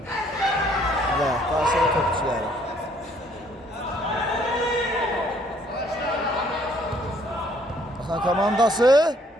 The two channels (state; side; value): normal; both; correlation 0.63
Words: Və qarşıya topçuları. Balxan komandası